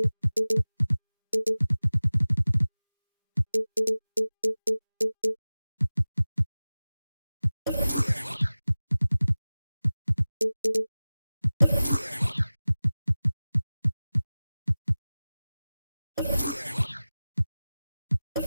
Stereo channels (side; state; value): both; inverted; correlation -0.98